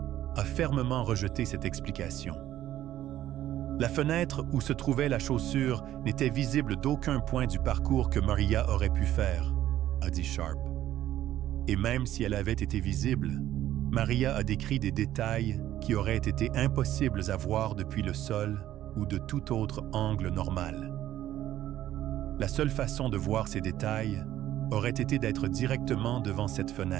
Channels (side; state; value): left; quieter; 12.9 dB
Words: a fermement rejeté cette explication. La fenêtre où se trouvait la chaussure n'était visible d'aucun point du parcours que Maria aurait pu faire, a dit Sharp. Et même si elle avait été visible, Maria a décrit des détails qui auraient été impossibles à voir depuis le sol ou de tout autre angle normal. La seule façon de voir ces détails aurait été d'être directement devant cette